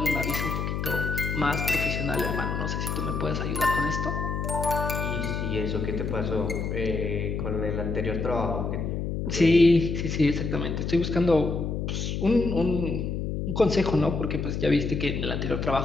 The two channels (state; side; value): noise; left; hum, 2 dB below the sound